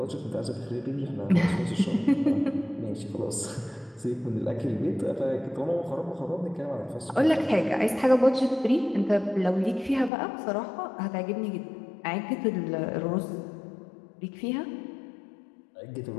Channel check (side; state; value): right; drops out; at 10.1 s